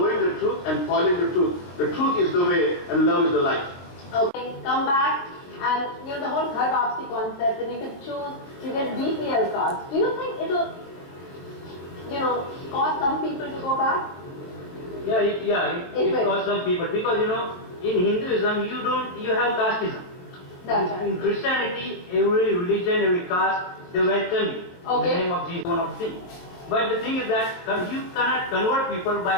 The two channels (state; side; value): late; right; 22 ms